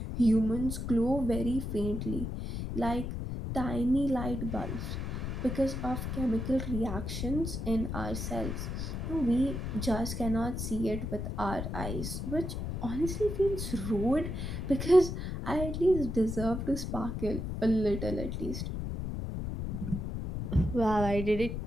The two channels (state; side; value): noise; left; rumble, 4 dB below the sound